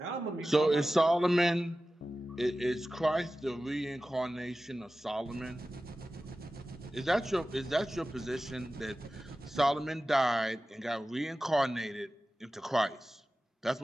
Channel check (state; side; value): normal; both; correlation 0.95